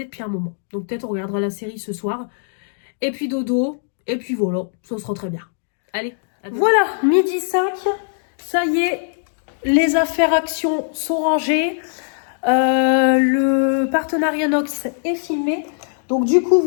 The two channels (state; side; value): silent; right; digital silence